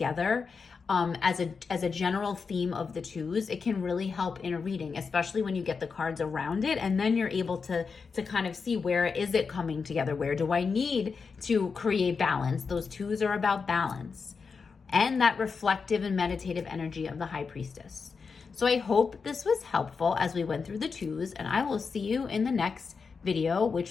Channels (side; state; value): right; quieter; 5.2 dB